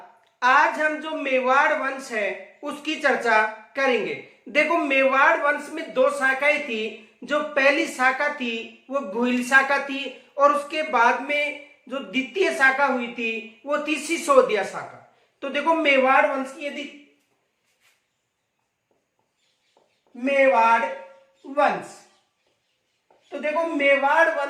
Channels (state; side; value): identical; both; correlation 1.00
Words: आज हम जो मेवाड़ वंश है उसकी चर्चा करेंगे। देखो, मेवाड़ वंश में दो शाखाएं थी। जो पहली शाखा थी वो गुहिल शाखा थी और उसके बाद में जो द्वितीय शाखा हुई थी वो थी सिसोदिया शाखा। तो देखो, मेवाड़ वंश की यदि मेवाड़ वंश तो देखो, मेवाड़